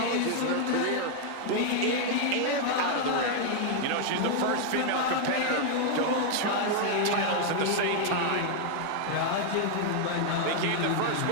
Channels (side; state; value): both; different; correlation 0.00